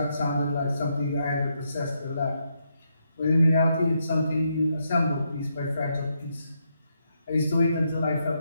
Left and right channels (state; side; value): inverted; both; correlation -0.80